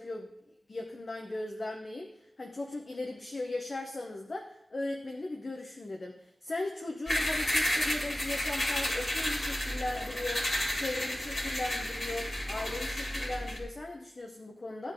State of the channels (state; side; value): normal; both; correlation 0.95